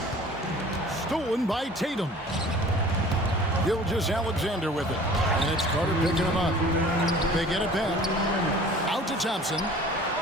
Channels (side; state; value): both; normal; correlation 0.47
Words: Stolen by Tatum. Gilgeous-Alexander with it. And it's Carter picking him up. They get it back. Out to Thompson.